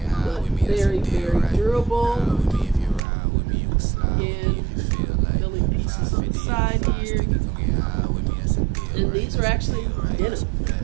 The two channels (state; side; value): drops out; left; at 3.0 s